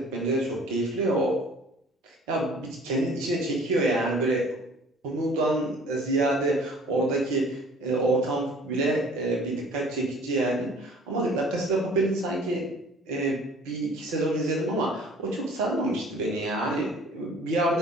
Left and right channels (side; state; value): both; normal; correlation 0.51